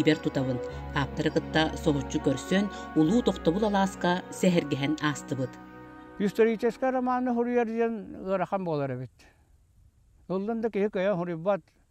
тутавын. Аптарыгытта соғучу көрсөн улуу тоқтабыл аласка сәхергәһен астыбыт. Исторический романы хурьерден гырахан болар бит. Олдан да кеһи көйә хурибат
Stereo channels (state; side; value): identical; both; correlation 1.00